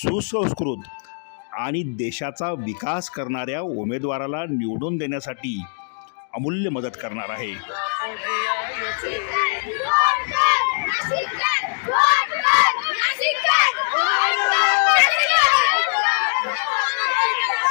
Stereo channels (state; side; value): silent; right; digital silence